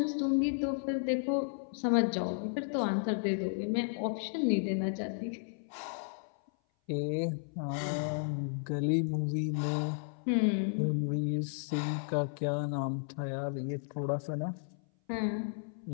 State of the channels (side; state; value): right; silent; 55 dB below the other